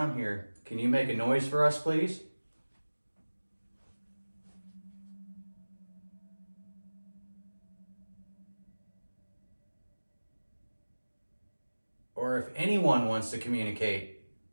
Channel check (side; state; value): both; inverted; correlation -1.00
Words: here, can you make a noise for us, please? Or if anyone wants to communicate,